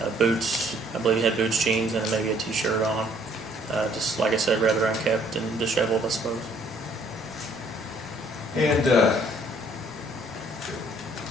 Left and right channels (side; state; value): both; normal; correlation 0.62